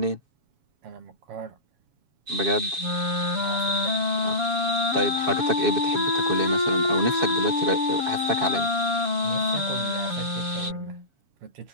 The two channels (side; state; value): left; late; 7.2 ms